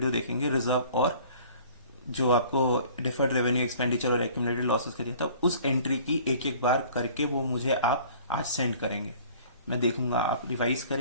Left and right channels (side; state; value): both; inverted; correlation -0.50